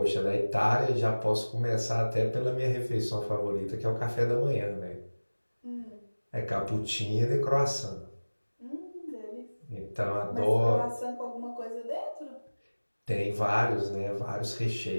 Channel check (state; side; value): inverted; both; correlation -1.00